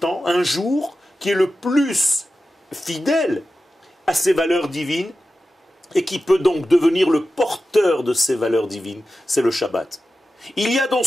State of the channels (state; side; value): normal; both; correlation 0.93